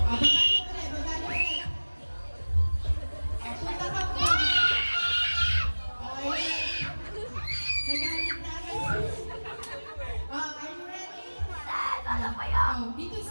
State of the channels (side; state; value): both; inverted; correlation -1.00